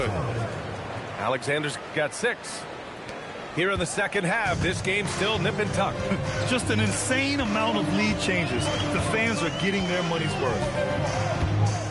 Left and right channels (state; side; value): identical; both; correlation 1.00